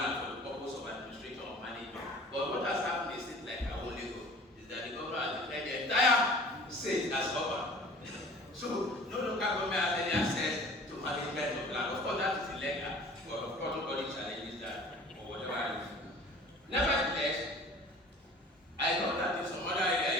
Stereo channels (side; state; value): both; normal; correlation 0.46